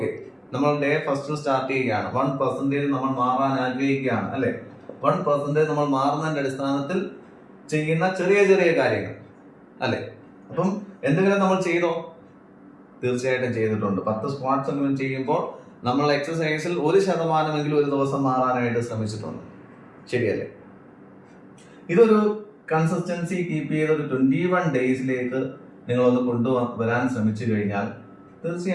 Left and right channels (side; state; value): both; identical; correlation 1.00